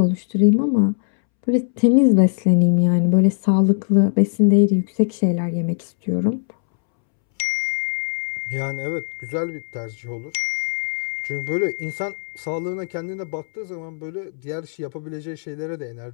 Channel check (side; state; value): right; silent; 65 dB below the other